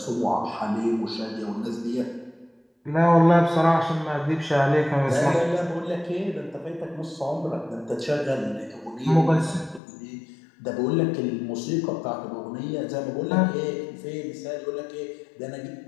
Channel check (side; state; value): right; drops out; at 9.8 s